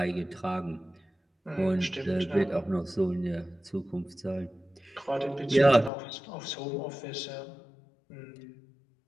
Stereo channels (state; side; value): drops out; right; at 5.9 s